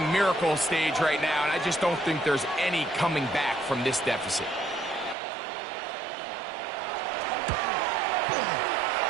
miracle stage right now, and I just don't think there's any coming back from this deficit.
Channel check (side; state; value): left; drops out; at 5.2 s